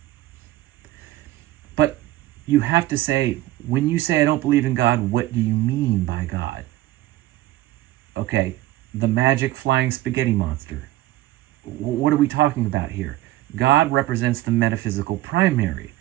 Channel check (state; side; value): quieter; left; 16.3 dB